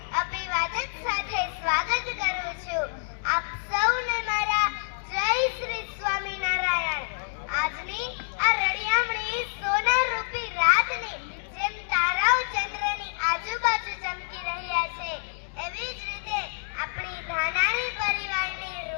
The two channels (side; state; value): right; silent; digital silence